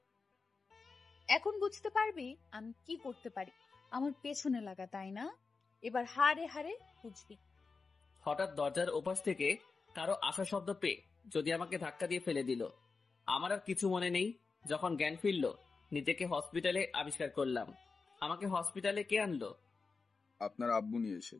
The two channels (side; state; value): right; quieter; 4.5 dB